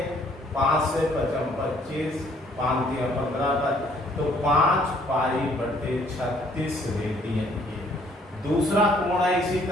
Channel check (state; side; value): normal; both; correlation 0.62